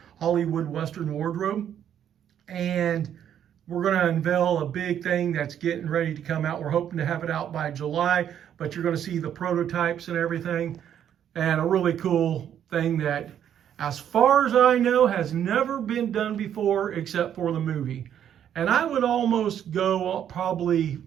Hollywood Western Wardrobe. And we're going to unveil a big thing that's getting ready to come out. We're hoping to have it out by July, but you're going to see the prototypes and everything, and a really cool thing that, as far as I know, has never been done before except for the movie. And I would almost go probably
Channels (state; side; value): quieter; left; 9.7 dB